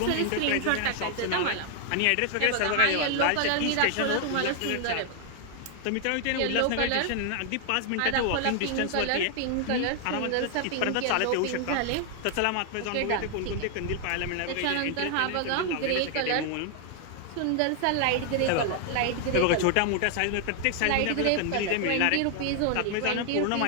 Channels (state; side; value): different; both; correlation 0.00